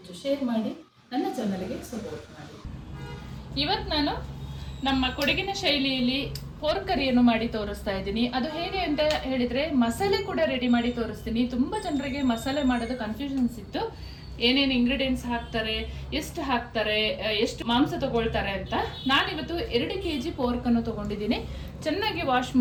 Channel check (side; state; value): both; identical; correlation 1.00